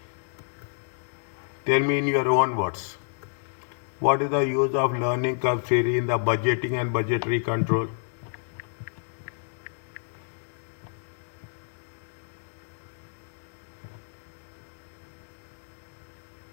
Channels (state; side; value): silent; right; digital silence